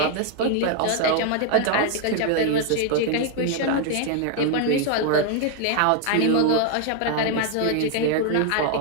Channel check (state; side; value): different; both; correlation 0.00